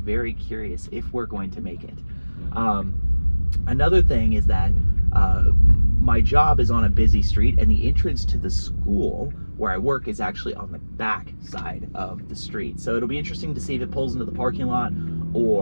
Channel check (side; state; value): both; inverted; correlation -1.00